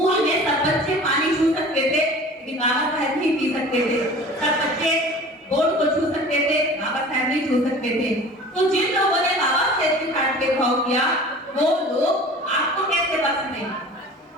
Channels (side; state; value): both; normal; correlation 0.42